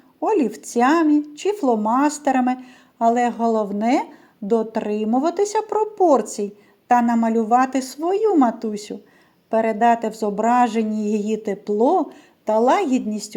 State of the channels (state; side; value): identical; both; correlation 1.00